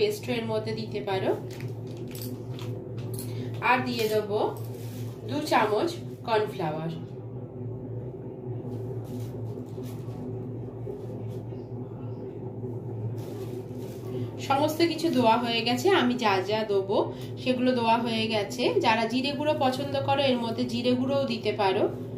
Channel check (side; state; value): both; identical; correlation 1.00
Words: এর মধ্যে দিতে পারো। আর দিয়ে দেবো 2 চামচ কর্নফ্লাওয়ার। সমস্ত কিছু দেওয়া হয়ে গেছে। আমি যা যা দেবো সেগুলো দেওয়া হয়ে গেছে। যারা জিরে গুঁড়ো পছন্দ করো এর মধ্যে জিরে গুঁড়োও দিতে পারো।